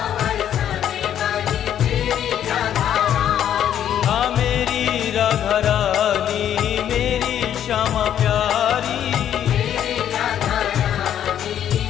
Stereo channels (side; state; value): right; quieter; 10.2 dB